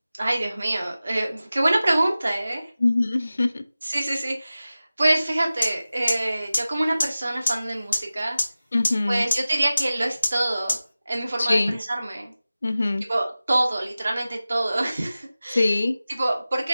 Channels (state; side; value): inverted; both; correlation -0.96